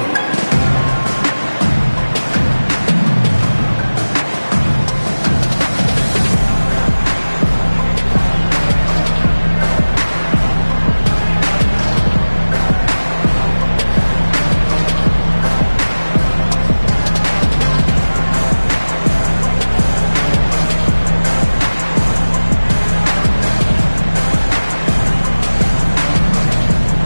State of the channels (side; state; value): both; inverted; correlation -1.00